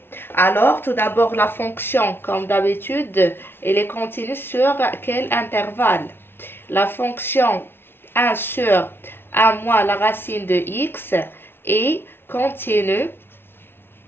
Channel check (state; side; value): late; right; 0.11 ms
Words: Alors, tout d'abord, la fonction, comme d'habitude, elle est continue sur quel intervalle? La fonction 1 sur 1 moins la racine de x est continue